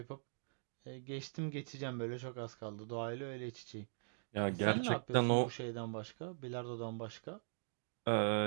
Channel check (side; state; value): left; silent; digital silence